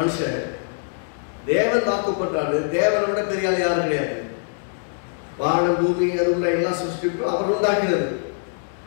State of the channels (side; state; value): right; silent; 63 dB below the other